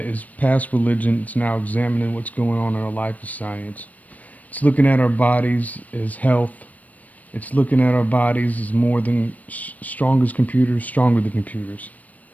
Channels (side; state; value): right; late; 0.073 ms